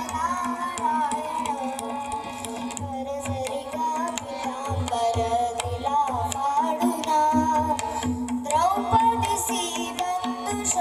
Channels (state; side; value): identical; both; correlation 1.00